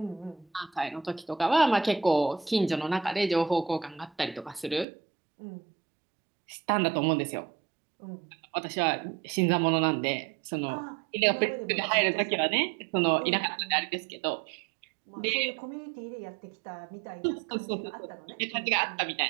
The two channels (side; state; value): left; drops out; at 4.9 s